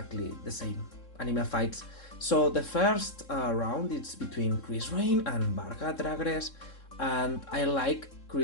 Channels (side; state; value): right; late; 3.7 ms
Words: the same anime fights. So the first round is between Krysrain and Varga dragres, and I like